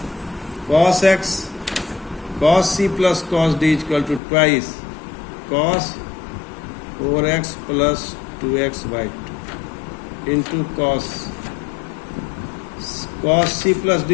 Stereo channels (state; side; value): drops out; right; at 4.2 s